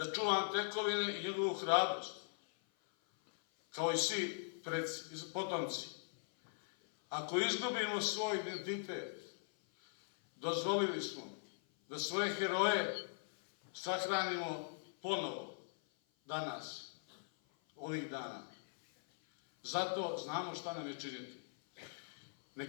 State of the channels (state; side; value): silent; right; 51 dB below the other